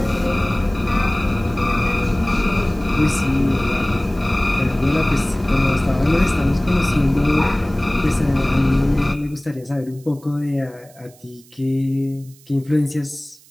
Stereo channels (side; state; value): right; noise; hiss, 26 dB below the sound